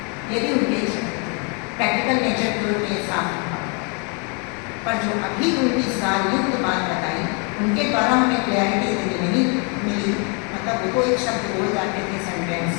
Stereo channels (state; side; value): quieter; right; 35.6 dB